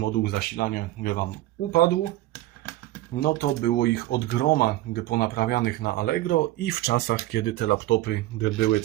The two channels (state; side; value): quieter; left; 16.4 dB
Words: zasilania Wam upadł, no to było ich od groma ponaprawianych na Allegro i w czasach, kiedy te laptopy były